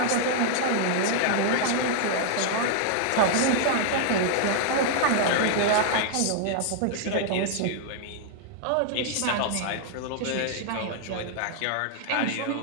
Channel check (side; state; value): both; different; correlation 0.00